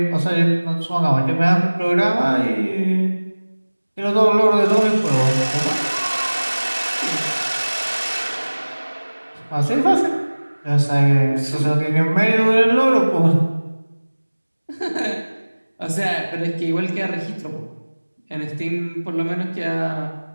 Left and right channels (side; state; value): both; inverted; correlation -1.00